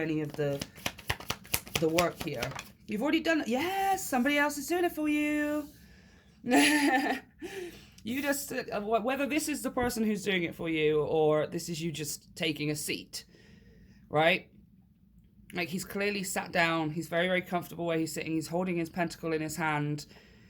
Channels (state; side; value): identical; both; correlation 1.00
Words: of the work here. You've already done it. Yes, somebody else is doing it for you. You just, whether this is the person who's doing it for you or this is you just taking a seat, right? Like, he's clearly sat down. He's very, very comfortable where he's sitting. He's holding his pentacle in his hand.